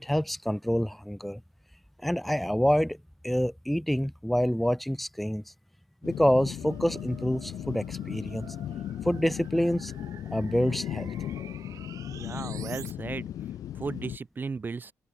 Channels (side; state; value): both; normal; correlation 0.95